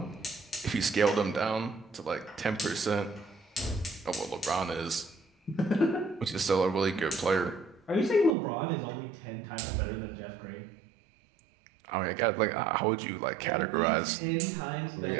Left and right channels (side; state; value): left; drops out; at 8.3 s